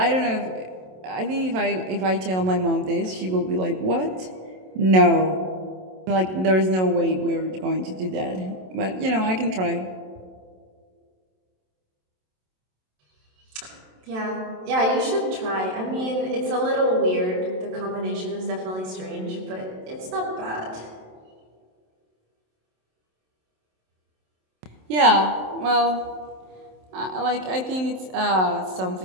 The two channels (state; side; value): late; left; 27 ms